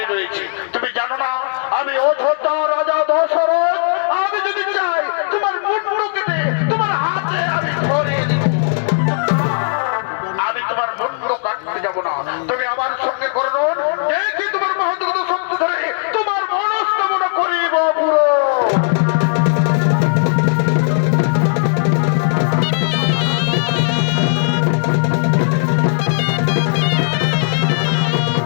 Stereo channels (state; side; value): silent; right; digital silence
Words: রয়েছে। তুমি জানো না আমি অযোধ্যা রাজা দশরথ, আমি যদি চাই তোমার মুন্ড কেটে তোমার হাতে আমি ধরিয়ে দিব। আমি তোমার মুন্ড কাটতে যাব না, তুমি আমার সঙ্গে করুন, দেখি তোমার মহৎগত শক্তি ধরে তোমার মনস্কামনা করিব পুরো।